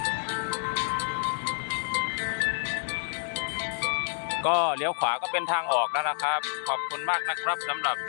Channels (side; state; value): right; silent; digital silence